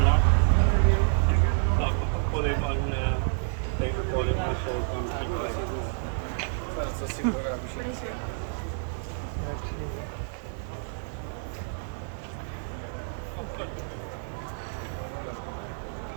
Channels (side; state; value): left; silent; digital silence